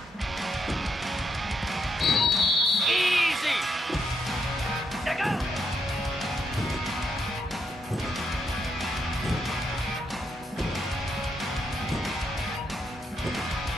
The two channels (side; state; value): both; normal; correlation 0.78